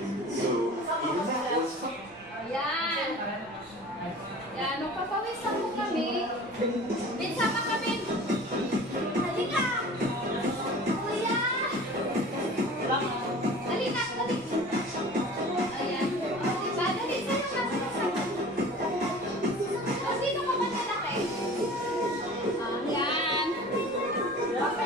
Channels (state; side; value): noise; left; rumble, 28 dB below the sound